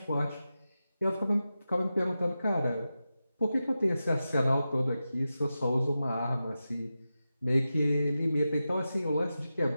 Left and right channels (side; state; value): both; inverted; correlation -0.92